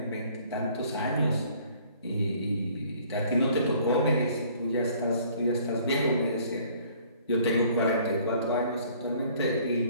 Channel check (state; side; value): inverted; both; correlation -0.56